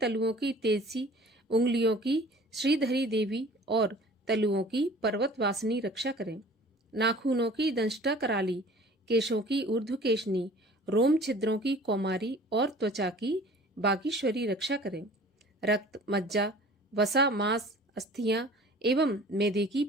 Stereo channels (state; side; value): normal; both; correlation 0.47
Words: की तेजसी, उंगलियों की श्रीधरी देवी और तलुओं की पर्वतवासिनी रक्षा करें। नाखूनों की दंष्टा कराली, केशों की ऊर्ध्वकेशनी, रोम छिद्रों की कौमारी और त्वचा की बागीश्वरी रक्षा करें। रक्त, मज्जा, वसा, मांस, अस्थियां एवं मेदे की